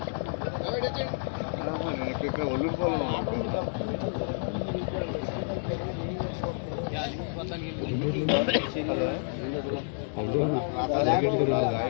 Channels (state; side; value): silent; right; digital silence